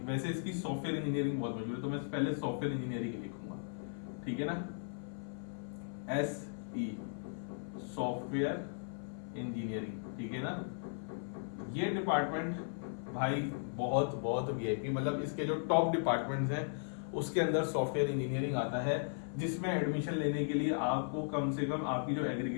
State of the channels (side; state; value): right; silent; 53 dB below the other